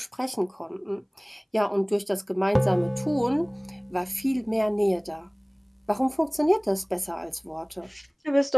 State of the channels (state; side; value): identical; both; correlation 1.00